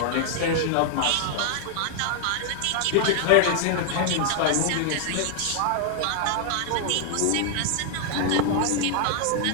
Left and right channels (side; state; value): both; different; correlation 0.00